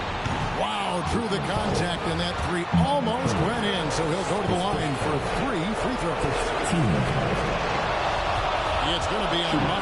Wow, through the contact, and that 3 almost went in, so he'll go to the line for 3 free throws. It's going to be on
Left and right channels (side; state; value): both; identical; correlation 1.00